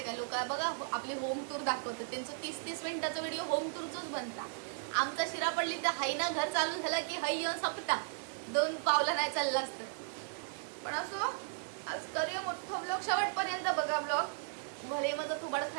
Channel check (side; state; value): left; silent; digital silence